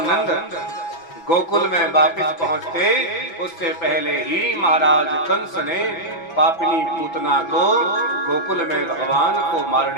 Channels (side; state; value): right; late; 6.0 ms